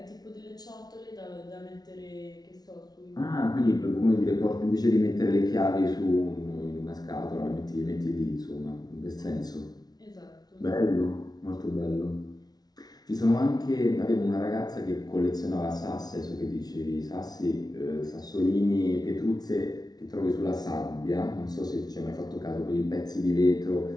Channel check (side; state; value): right; late; 0.19 ms